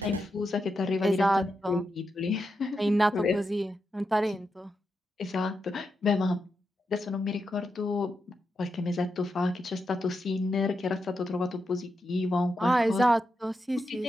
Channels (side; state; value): both; normal; correlation 0.86